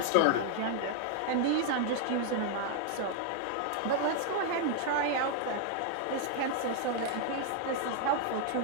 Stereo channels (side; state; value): both; different; correlation 0.00